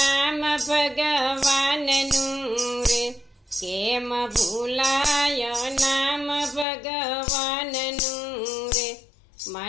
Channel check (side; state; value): right; drops out; at 6.7 s